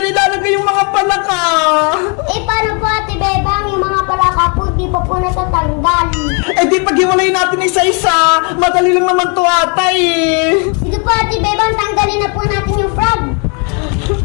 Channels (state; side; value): quieter; right; 36.1 dB